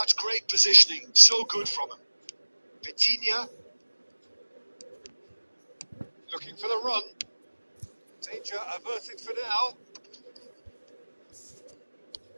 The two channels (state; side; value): inverted; both; correlation -1.00